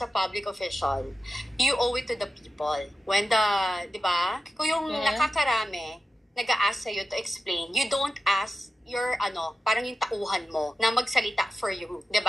a public official, you owe it to the people. When di ba? Kung yung nakakarami, nag-a-ask sa'yo to explain, you don't ask your, parang yung tauhan mo na magsalita for you.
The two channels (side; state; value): both; normal; correlation 0.92